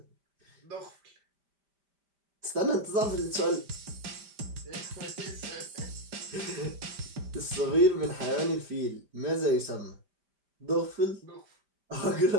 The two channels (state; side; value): late; left; 5.0 ms